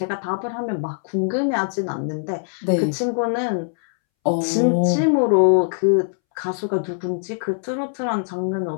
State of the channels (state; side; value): silent; right; 64 dB below the other